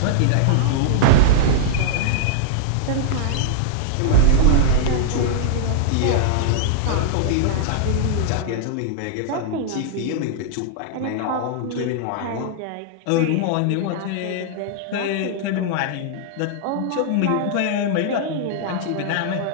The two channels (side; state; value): both; different; correlation -0.01